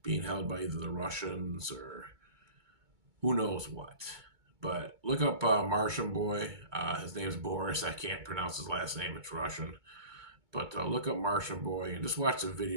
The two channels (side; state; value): left; late; 2.2 ms